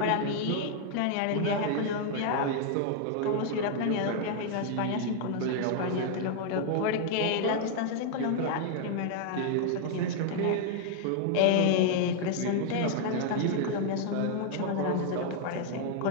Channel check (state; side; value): different; both; correlation 0.00